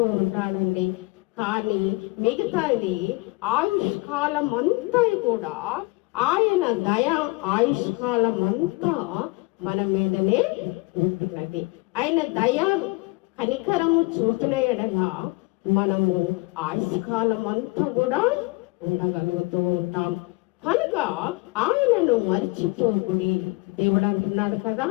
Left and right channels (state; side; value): quieter; right; 25.0 dB